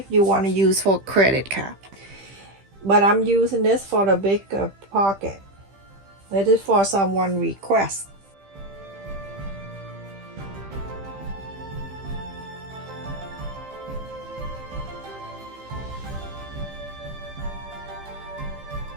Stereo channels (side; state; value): left; late; 15 ms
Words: you want to use for credit card. But I'm using this for the big pocket. This is for someone request.